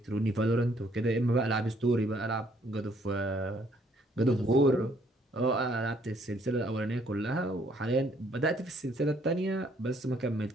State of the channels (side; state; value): both; normal; correlation 0.65